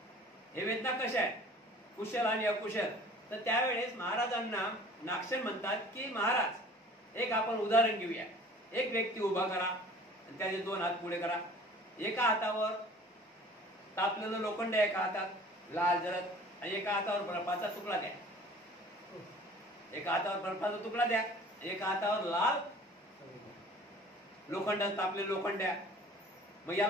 हे वेदना कशा आहेत, कुशल आणि अकुशल. तर त्यावेळेस महाराजांना नागसेन म्हणतात की महाराज, एक आपण उदाहरण घेऊया. एक व्यक्ती उभा करा आणि त्याचे 2 हात पुढे करा. एका हातावर तापलेलं लोखंड, एका हातात लाल जरद, आणि एका हातावर बर्फाचा तुकडा द्या. एका हातावर बर्फाचा तुकडा द्या, एका हातावर लाल लोखंड, तापलेलं लोखंड द्या. मग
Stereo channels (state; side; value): normal; both; correlation 0.48